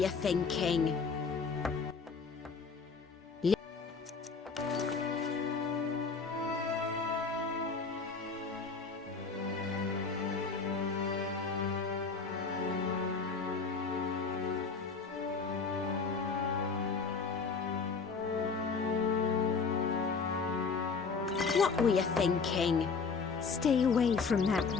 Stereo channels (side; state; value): right; quieter; 4.9 dB